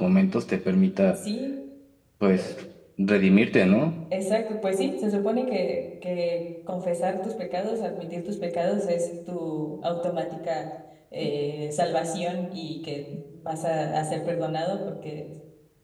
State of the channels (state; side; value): identical; both; correlation 1.00